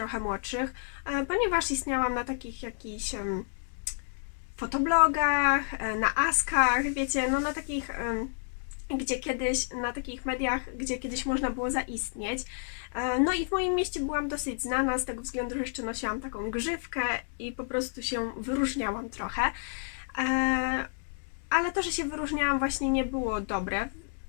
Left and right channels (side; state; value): right; silent; digital silence